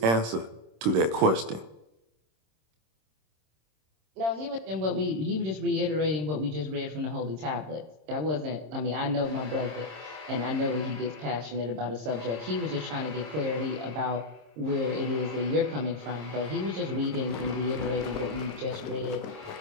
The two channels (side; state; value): left; late; 26 ms